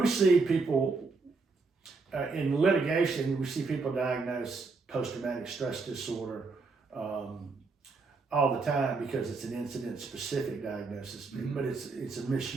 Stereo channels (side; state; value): left; quieter; 4.1 dB